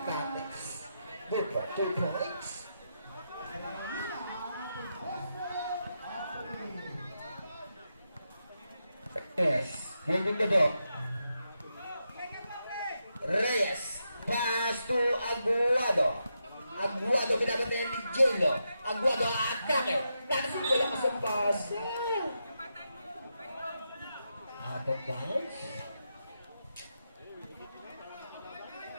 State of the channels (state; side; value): inverted; both; correlation -0.85